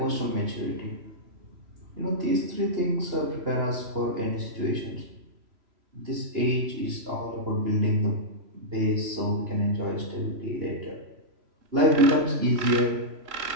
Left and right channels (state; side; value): late; left; 3.1 ms